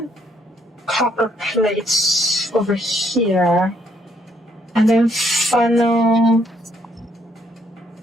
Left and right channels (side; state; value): both; normal; correlation 0.71